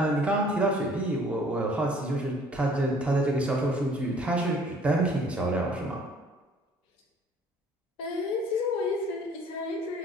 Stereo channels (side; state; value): both; normal; correlation 0.55